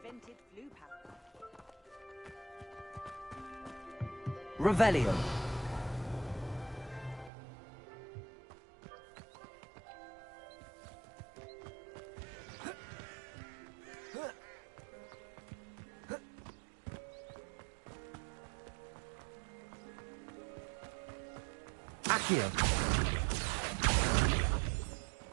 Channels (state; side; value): drops out; left; at 7.3 s